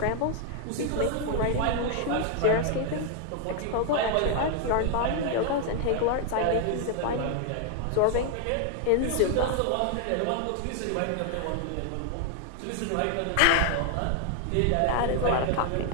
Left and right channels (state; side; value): different; both; correlation 0.00